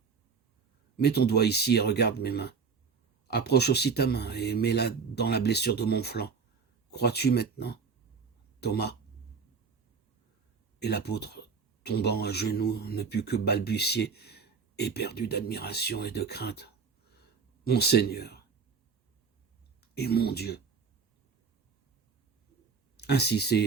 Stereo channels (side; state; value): left; quieter; 5.5 dB